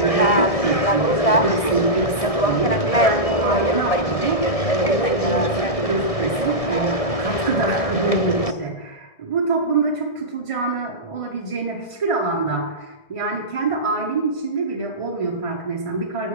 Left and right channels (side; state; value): right; late; 1.6 ms